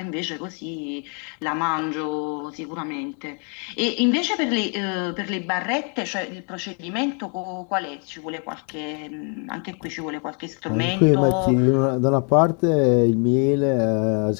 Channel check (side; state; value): right; quieter; 39.3 dB